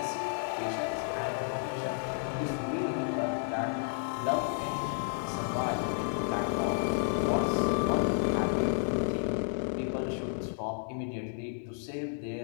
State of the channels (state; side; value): silent; right; digital silence